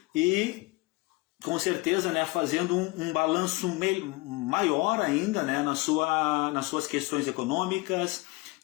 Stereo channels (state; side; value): quieter; right; 23.5 dB